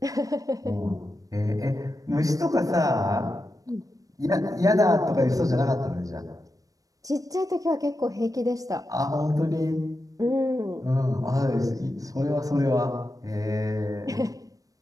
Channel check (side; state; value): left; late; 0.17 ms